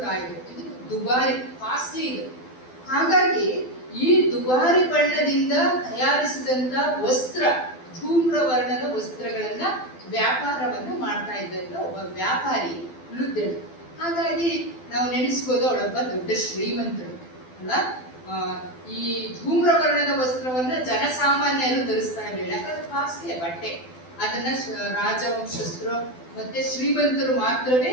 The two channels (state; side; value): late; right; 12 ms